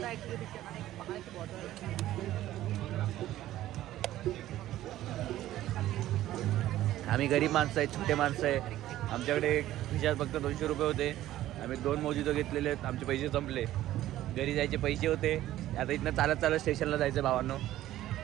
आम्ही गरीब माणसं आहे, छोटे माणसं आहे. आमच्याकडे खिशात फक्त 200 रुपये होते. आम्ही 2 मोजितो घेतलेले आहेत. आमचे पैसे संपले. घरी जायचे पैसे होते. आता इथनं चालत स्टेशनला जायचं. भावांनो,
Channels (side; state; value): left; quieter; 14.1 dB